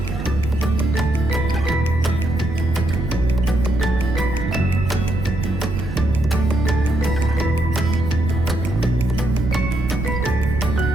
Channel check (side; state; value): right; noise; rumble, 5 dB below the sound